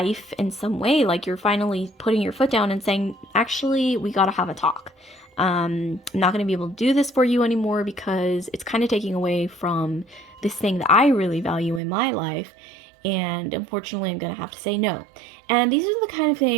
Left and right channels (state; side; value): drops out; left; at 11.8 s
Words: in some way, like, you're finally putting your foot down and saying, actually, we gotta have a talk. I'm not going to be able to do this for you anymore, because it's kind of taking away from this thing that I really value in my life. And unfortunately, I'm going to have to say no. And these are the kind of